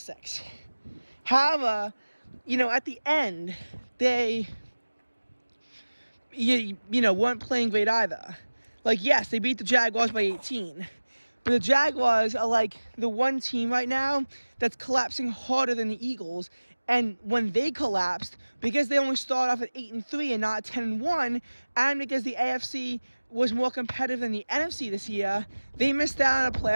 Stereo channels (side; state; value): both; inverted; correlation -1.00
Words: 6. However, at the end, they, weren't playing great either. Like, yes, they beat the Jaguars by 18, but the Jaguars are like the one team right now that's collapsing harder than the Eagles. And when they collapsed, because they only started off at 8-3 and not 10-1, and because the AFC was more competitive than the NFC this year, they missed out on a